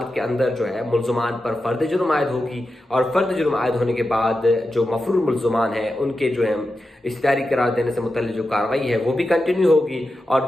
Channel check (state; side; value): normal; both; correlation 0.90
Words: کے اندر جو ہے ملزمان پر فرد جرم عائد ہوگی، اور فرد جرم عائد ہونے کے بعد جو مفرور ملزمان ہیں ان کے جو ہے اشتہاری قرار دینے سے متعلق جو کارروائی ہے وہ بھی کنٹینیو ہوگی، اور